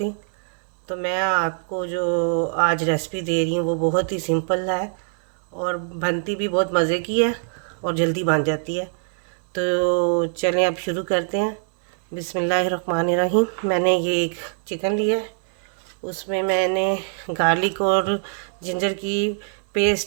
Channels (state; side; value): silent; left; 56 dB below the other